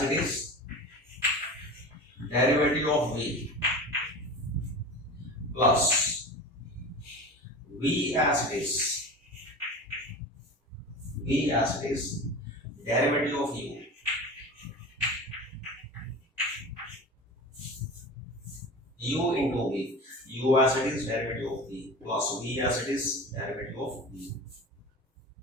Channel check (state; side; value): normal; both; correlation 0.32